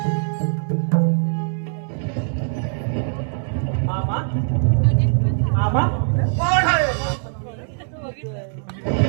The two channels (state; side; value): silent; left; digital silence